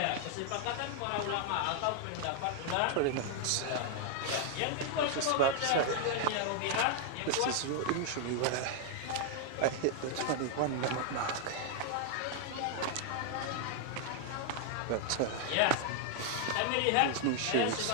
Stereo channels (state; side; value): different; both; correlation 0.00